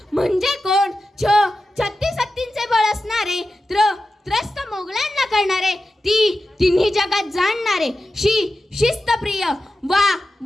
म्हणजे कोण? छत्तीस हत्तींचे बळ असणारे, त्रस्त मोगलांना करणारे, तिन्ही जगात जाणणारे, शिस्तप्रिय,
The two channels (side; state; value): both; normal; correlation 0.92